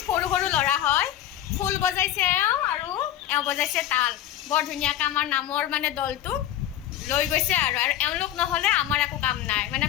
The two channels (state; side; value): quieter; right; 12.0 dB